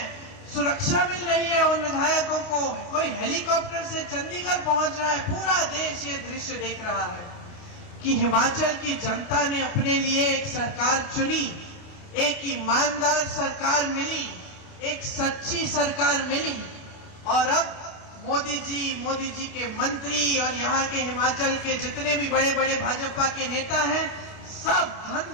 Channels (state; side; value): late; right; 29 ms